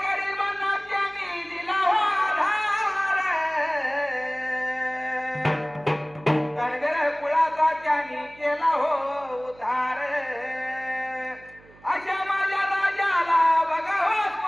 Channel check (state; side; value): noise; right; hum, 25 dB below the sound